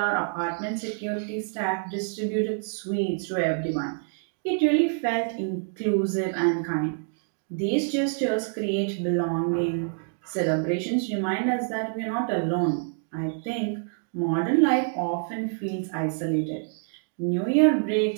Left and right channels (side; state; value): left; silent; digital silence